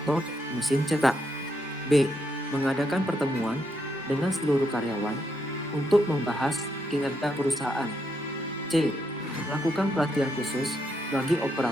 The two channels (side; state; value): both; normal; correlation 0.78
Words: mesin cetak. B. Mengadakan pertemuan dengan seluruh karyawan untuk membahas kinerja perusahaan. C. Melakukan pelatihan khusus bagi